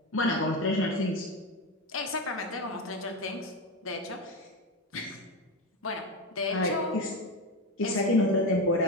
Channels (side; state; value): both; normal; correlation 0.17